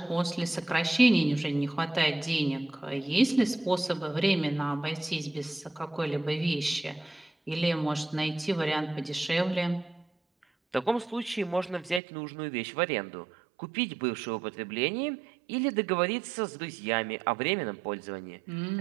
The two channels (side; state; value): left; drops out; at 12.0 s